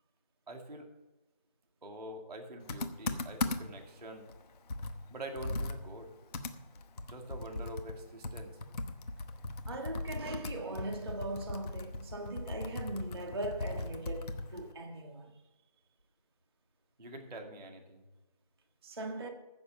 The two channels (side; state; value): both; inverted; correlation -0.58